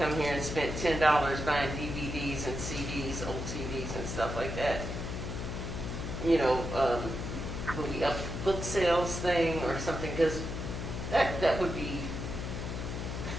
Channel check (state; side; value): noise; left; hum, 5 dB below the sound